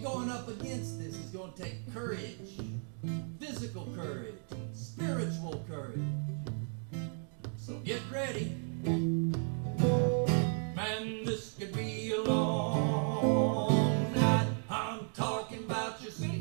going up against this is going to take courage, physical courage, and spiritual courage. So get ready. Man, this could be a long night. I'm talking about your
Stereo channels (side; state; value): left; silent; 55 dB below the other